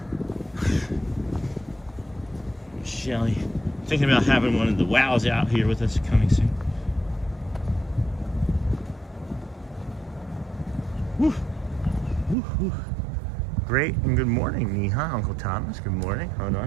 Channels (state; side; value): drops out; left; at 12.4 s